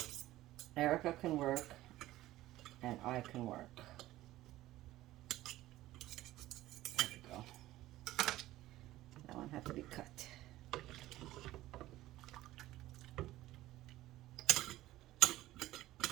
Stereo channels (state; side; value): quieter; left; 15.8 dB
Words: Erica can work, and I can work. There we go. That one had to be cut.